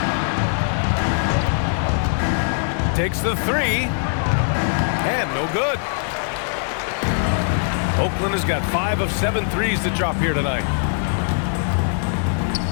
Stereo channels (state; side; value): silent; right; digital silence